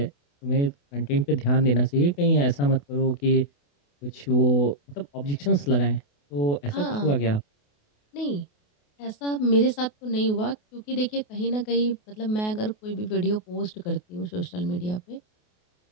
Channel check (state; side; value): late; right; 28 ms